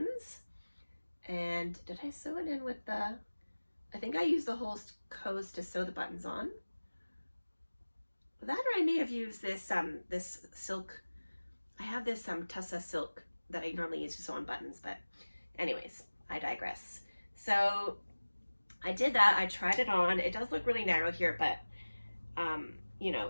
And did I sew it in with the, I think I used the Holst Coast to sew the buttons on. That, or I may have used this this silk. I have this Tussa silk that I normally use to sew on buttons, but anyways, I digress. So I did that. I tried it on. It does look really narrow here, but you know,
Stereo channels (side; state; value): both; inverted; correlation -1.00